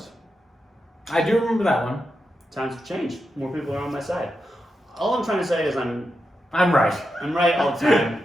I do remember that one. Times have changed. More people are on my side. All I'm trying to say is I'm right. right all the time.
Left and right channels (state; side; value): normal; both; correlation 0.87